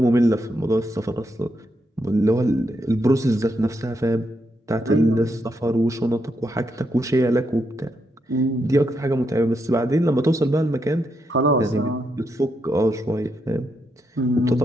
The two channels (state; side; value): normal; both; correlation 0.81